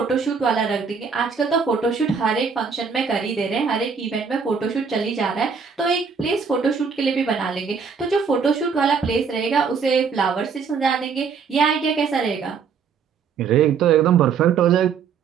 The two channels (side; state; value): left; quieter; 6.0 dB